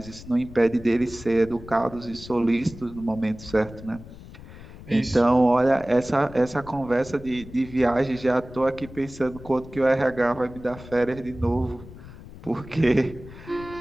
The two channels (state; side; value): noise; left; rumble, 16 dB below the sound